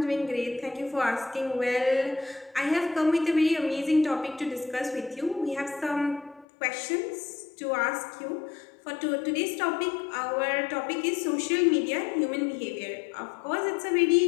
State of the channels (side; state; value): right; drops out; at 6.5 s